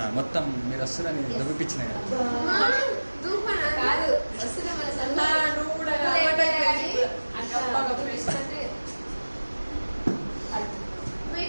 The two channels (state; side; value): inverted; both; correlation -1.00